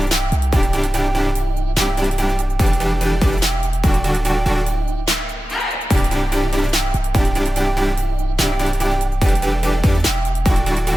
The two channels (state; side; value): normal; both; correlation 0.94